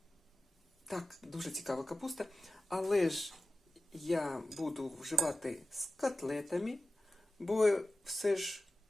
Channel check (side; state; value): both; normal; correlation 0.94